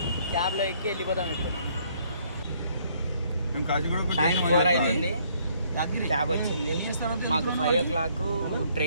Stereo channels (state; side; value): inverted; both; correlation -0.66